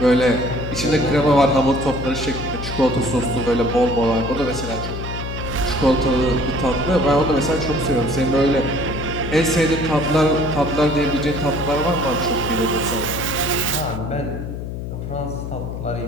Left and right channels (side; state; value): left; noise; hum, 6 dB below the sound